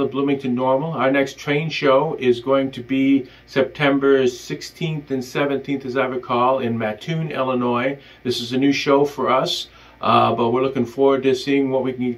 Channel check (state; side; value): identical; both; correlation 1.00